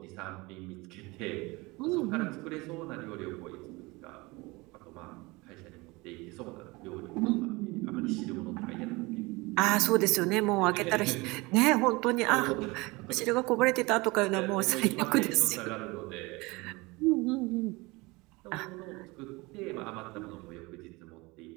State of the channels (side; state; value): left; quieter; 23.7 dB